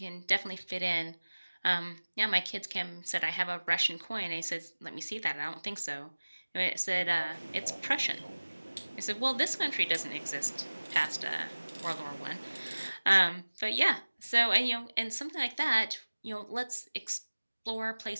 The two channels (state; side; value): inverted; both; correlation -1.00